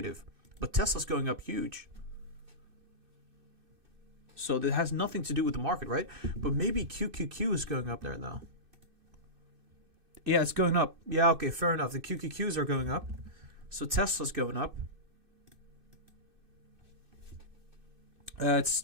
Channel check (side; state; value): left; late; 2.6 ms